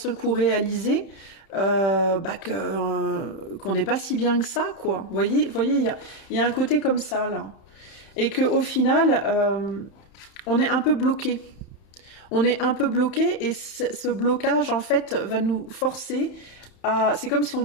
coup réaliser qu'on n'est pas si bien que ça, quoi. Vous voyez, il y a un côté comme ça, là. Et qu'au final, on est un peu bloqué. On est un peu bloqué et ce blocage, en fait, va nous forcer à... C'est comme si on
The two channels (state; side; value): late; right; 31 ms